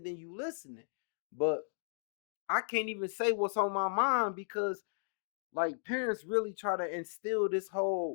then you listening. But I can't even say what's on my mind because like parents really try to instill this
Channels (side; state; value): right; silent; digital silence